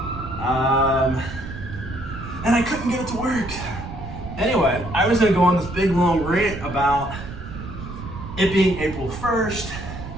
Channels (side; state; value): right; noise; rumble, 10 dB below the sound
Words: And I couldn't get it to work. Anyway, I was gonna go on this big long rant about it being April 1st,